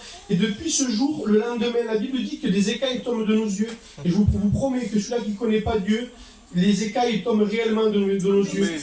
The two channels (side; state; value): both; identical; correlation 1.00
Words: Et depuis ce jour, le lendemain, la Bible dit que des écailles tombent de nos yeux. Et je vous promets que celui-là qui ne connaît pas Dieu, les écailles tombent réellement de nos yeux.